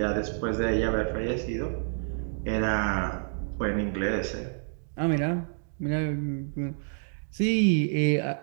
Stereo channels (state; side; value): silent; left; digital silence